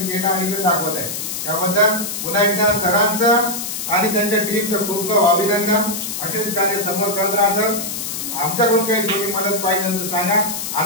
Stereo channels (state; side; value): noise; left; hiss, 5 dB below the sound